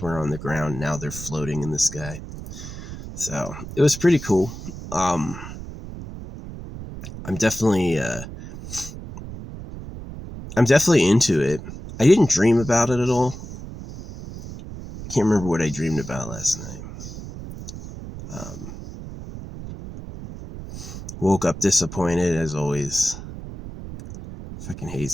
on the ground. Now they're floating in the sky. So it was pretty cool. Um, I'm definitely I'm definitely into it. I didn't dream about it at all. Can't remember what I dreamed about last night. Um, Woke up disappointed as always. Fucking hate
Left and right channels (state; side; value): noise; right; rumble, 11 dB below the sound